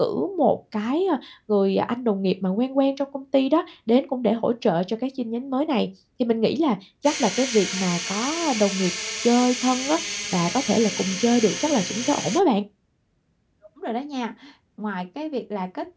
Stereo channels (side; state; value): both; identical; correlation 1.00